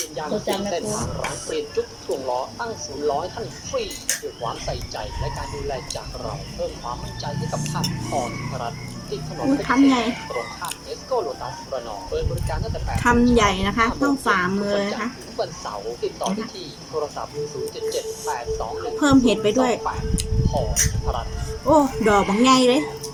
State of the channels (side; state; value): both; identical; correlation 1.00